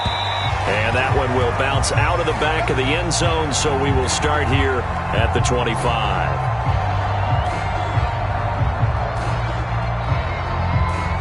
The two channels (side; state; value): both; identical; correlation 1.00